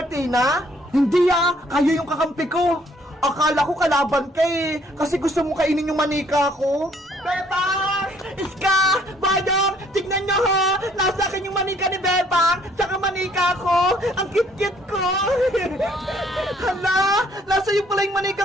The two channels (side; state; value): both; normal; correlation 0.63